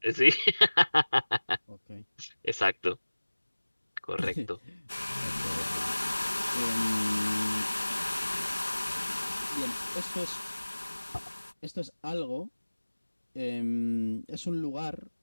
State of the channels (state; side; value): inverted; both; correlation -1.00